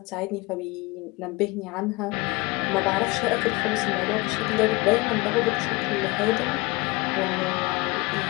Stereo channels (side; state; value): right; quieter; 24.2 dB